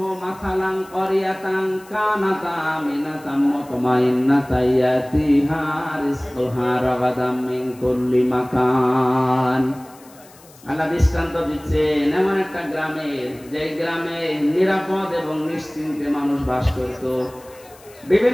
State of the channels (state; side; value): noise; left; hiss, 25 dB below the sound